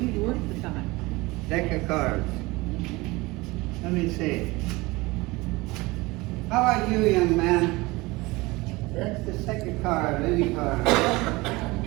work the time. Deck of cards. Let me see. How about you, young man? That's the second card, any card.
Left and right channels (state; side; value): quieter; left; 22.3 dB